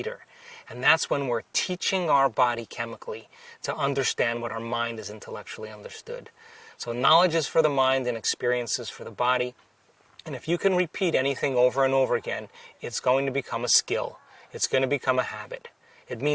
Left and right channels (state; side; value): identical; both; correlation 1.00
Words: And that's when we're teaching our body chemically to understand what our mind is intellectually understood. So knowledge is for the mind and experiences for the body. And if you can repeat anything over and over again, it's going to become a skill. It's going to become a habit. It